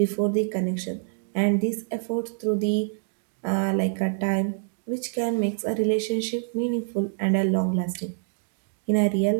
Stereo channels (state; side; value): silent; left; 61 dB below the other